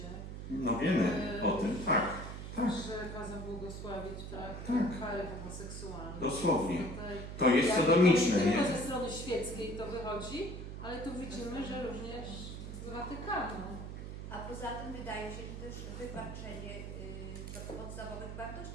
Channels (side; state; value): right; noise; hum, 8 dB below the sound